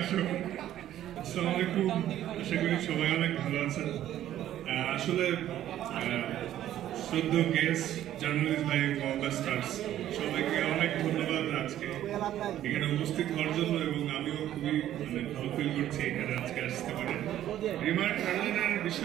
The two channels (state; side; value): quieter; left; 12.3 dB